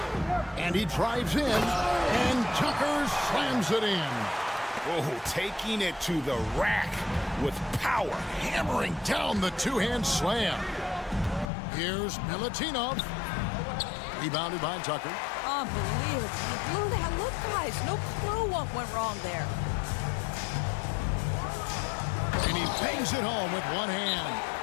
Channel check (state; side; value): drops out; right; at 11.5 s